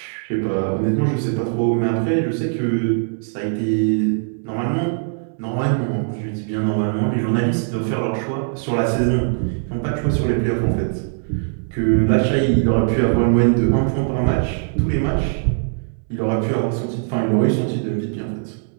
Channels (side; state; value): left; silent; digital silence